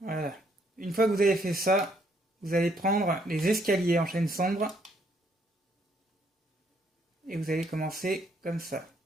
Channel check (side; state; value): both; normal; correlation 0.70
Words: Une fois que vous avez fait ça, vous allez prendre les escaliers en chêne sombre et vous allez commencer comme ça.